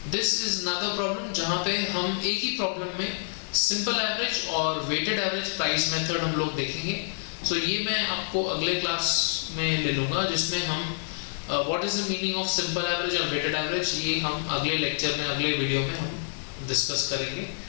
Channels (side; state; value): right; silent; 60 dB below the other